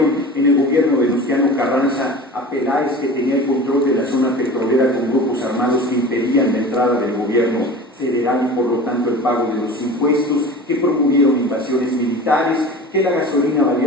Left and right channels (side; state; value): both; normal; correlation 0.36